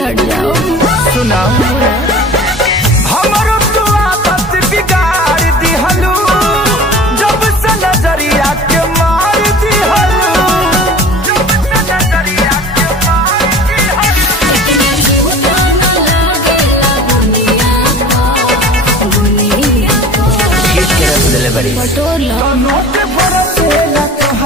हट जाओ। सुना हमरो तू आदत बिगाड़ दिहलू, जब से नजरिया के मार दिहलू, जब से नजरिया के मार दिहलू। बटोला नोट बरसेला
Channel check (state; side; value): normal; both; correlation 0.41